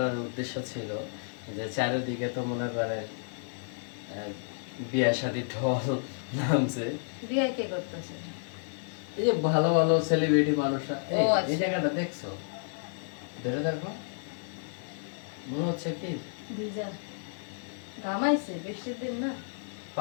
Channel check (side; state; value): right; silent; digital silence